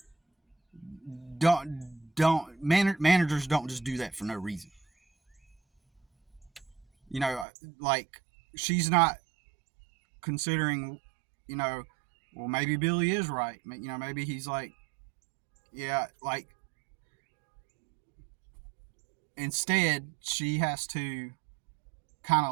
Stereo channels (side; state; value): left; drops out; at 7.5 s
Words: Managers don't just do that for no reason. You know, like she's not considering, you know, well, maybe Billy is right. You know, maybe he's like, yeah, like instead she has to kind